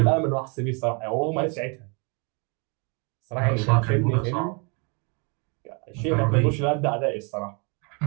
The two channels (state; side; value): quieter; left; 34.0 dB